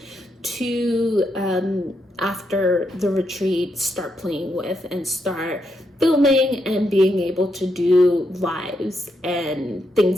to after the retreat start playing with and start filming and being able to do lives and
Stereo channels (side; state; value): both; normal; correlation 0.80